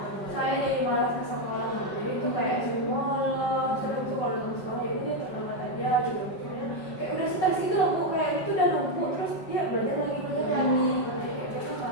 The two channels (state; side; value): late; right; 5.3 ms